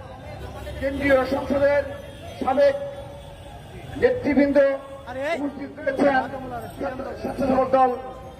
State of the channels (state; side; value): identical; both; correlation 1.00